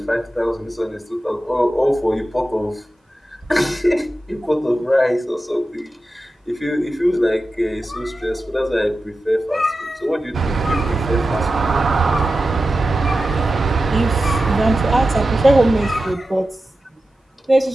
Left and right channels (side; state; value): both; normal; correlation 0.93